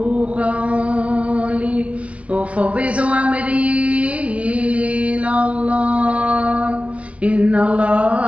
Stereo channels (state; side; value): late; left; 0.063 ms